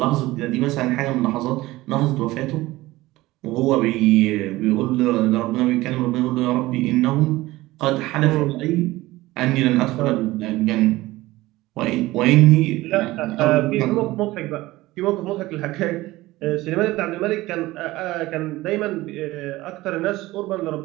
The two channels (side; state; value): left; quieter; 18.4 dB